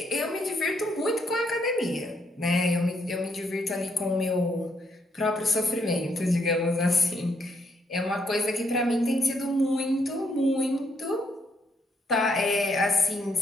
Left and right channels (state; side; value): normal; both; correlation 0.74